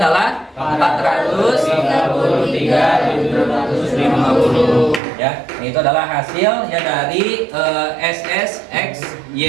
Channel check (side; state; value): left; drops out; at 5.0 s